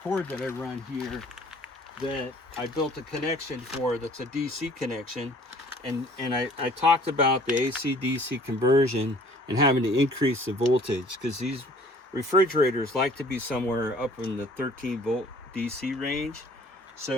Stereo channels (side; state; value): both; normal; correlation 0.53